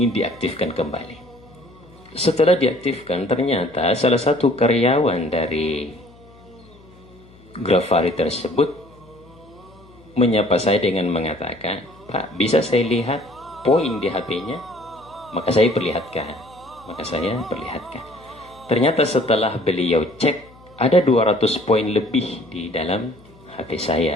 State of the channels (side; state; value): left; noise; hum, 25 dB below the sound